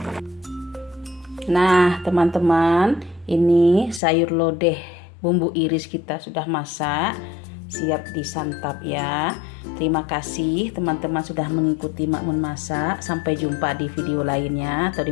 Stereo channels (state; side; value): drops out; right; at 4.0 s